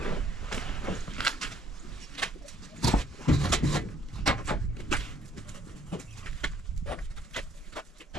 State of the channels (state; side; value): normal; both; correlation 0.63